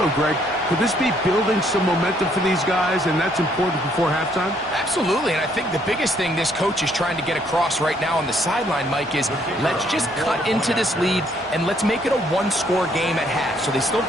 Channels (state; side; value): normal; both; correlation 0.68